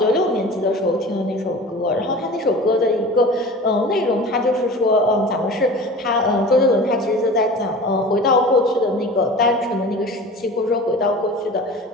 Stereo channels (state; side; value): normal; both; correlation 0.38